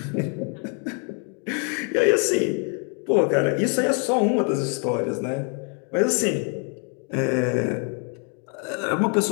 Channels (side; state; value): right; quieter; 38.9 dB